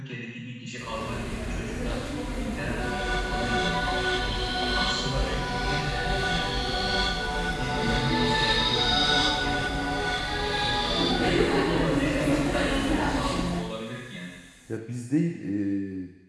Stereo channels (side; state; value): both; identical; correlation 1.00